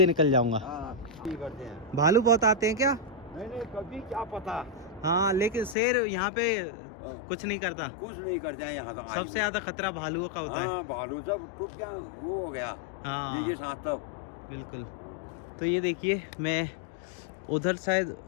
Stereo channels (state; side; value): drops out; right; at 5.8 s